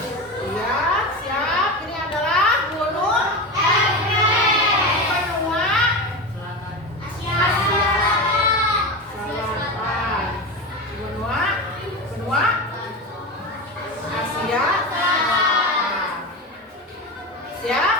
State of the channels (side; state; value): both; normal; correlation 0.22